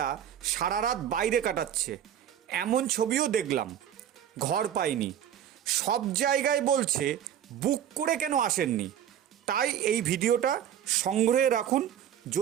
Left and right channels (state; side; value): quieter; left; 10.0 dB